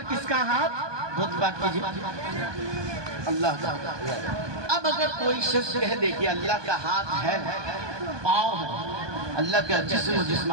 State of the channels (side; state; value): left; late; 1.2 ms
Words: کس کا ہاتھ, بہت بات کیجئے اللہ کا. اب اگر کوئی شخص کہہ دے کہ اللہ کا ہاتھ ہے, پاؤں ہے, اللہ کا جسم و